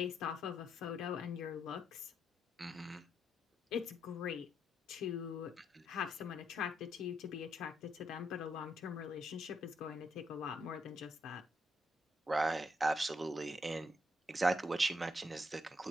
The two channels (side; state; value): both; normal; correlation 0.77